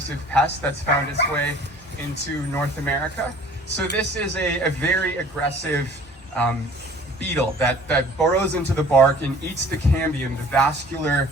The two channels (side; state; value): both; normal; correlation 0.49